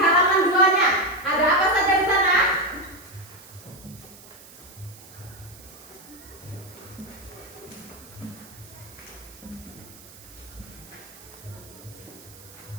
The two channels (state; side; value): noise; right; hiss, 20 dB below the sound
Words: 2-nya, ada apa saja di sana?